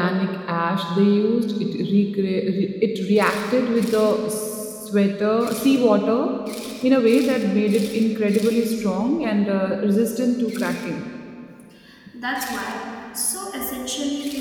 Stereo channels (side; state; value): both; identical; correlation 1.00